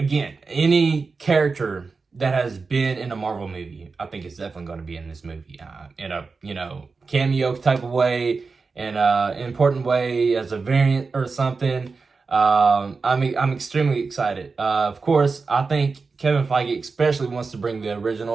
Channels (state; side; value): quieter; left; 4.5 dB